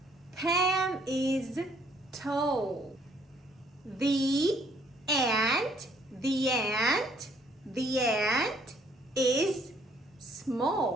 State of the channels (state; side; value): normal; both; correlation 0.64